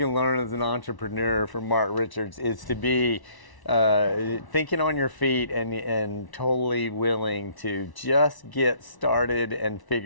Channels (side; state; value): right; late; 1.1 ms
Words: learn as an entrepreneur from Mark Richards, it's to be thinking on your feet and totally willing to just get started and